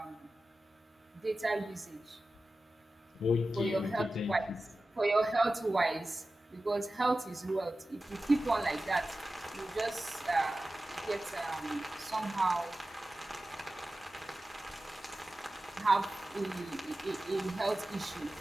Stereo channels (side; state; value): both; normal; correlation 0.94